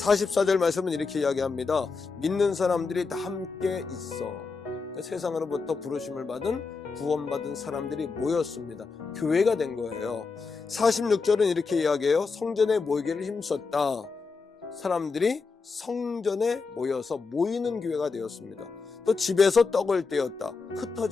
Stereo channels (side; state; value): right; quieter; 4.6 dB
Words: 말씀은 이렇게 이야기합니다. 믿는 사람들이 다 함께 있어. 그러니까 세상으로부터 부르심을 받은 구원받은 사람들이 모였습니다. 교회가 된 거예요. 46절은 이렇게 이야기해요. 성전에 모이기를 힘썼다. 사람들이 성전에 모여서 모이는 교회가 되었습니다. 또 집에서 떡을 떼었다.